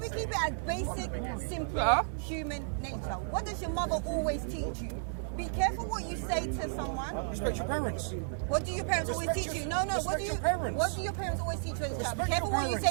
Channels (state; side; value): silent; left; digital silence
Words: keep it as basic, simple, human nature. What does your mother always teach you? Be careful what you say to someone. Respect your parents. What do your parents always teach you? No. What do Respect your parents. What do your parents always teach you as a child? Be Respect careful your what you say